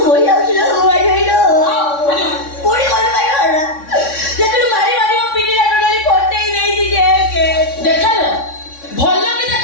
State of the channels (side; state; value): right; late; 3.6 ms